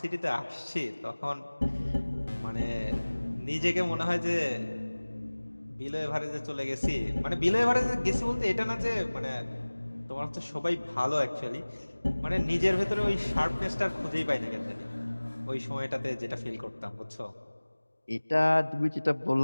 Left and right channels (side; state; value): both; inverted; correlation -1.00